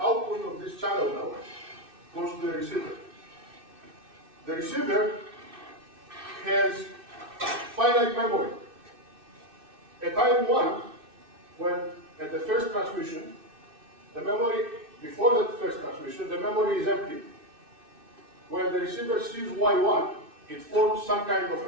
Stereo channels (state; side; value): late; left; 2.6 ms